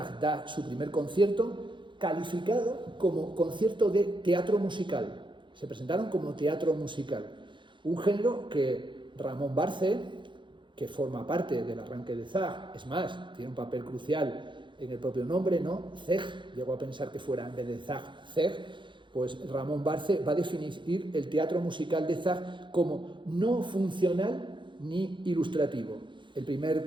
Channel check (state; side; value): late; left; 0.23 ms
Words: da su primer concierto, calificado como concierto de teatro musical. Se presentaron como teatro musical, un género que Ramón Barce, que forma parte del arranque de Zach, es más, tiene un papel crucial en el propio nombre, ¿no? Zeg, llegó a pensar que fuera en vez de Zach, Zeg, pues Ramón Barce va a definir el teatro musical de Zach como no funcional ni ilustrativo. El